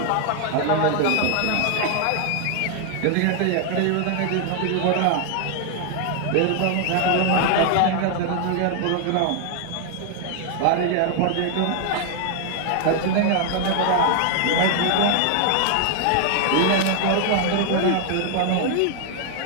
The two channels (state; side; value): different; both; correlation 0.00